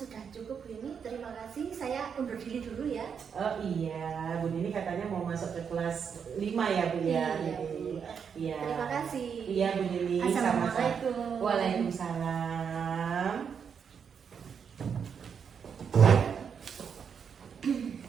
cukup, Bu Yumi. Terima kasih. Saya undur diri dulu ya. Oh iya, Bu Nining katanya mau masuk ke kelas 5 ya Bu ya. Iya, Bu. Iya. Terima kasih. Iya Bu Nining. Assalamualaikum. Waalaikumsalam.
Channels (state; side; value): quieter; left; 6.9 dB